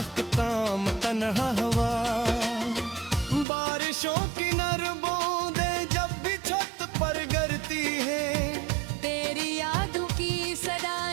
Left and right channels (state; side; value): drops out; left; at 3.5 s